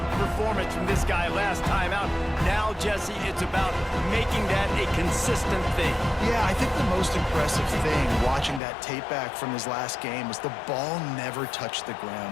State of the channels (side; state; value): right; drops out; at 8.6 s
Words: performance from this guy last time out. Now, Jesse, it's about making that a consistent thing. Yeah, I think the most impressive thing watching that tape back from his last game was the ball never touched the